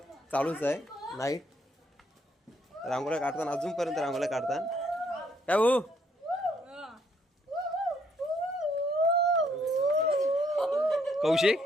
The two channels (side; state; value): both; normal; correlation 0.69